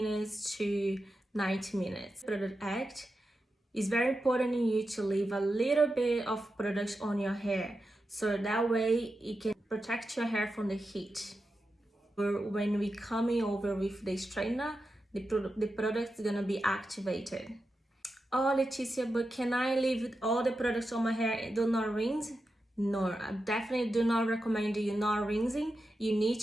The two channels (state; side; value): normal; both; correlation 0.90